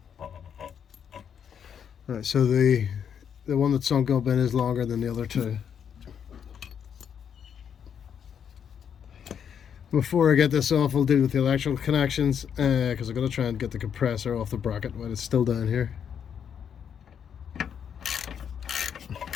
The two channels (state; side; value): quieter; right; 8.0 dB